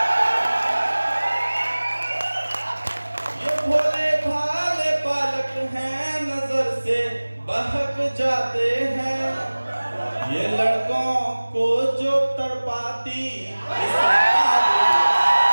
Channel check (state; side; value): inverted; both; correlation -1.00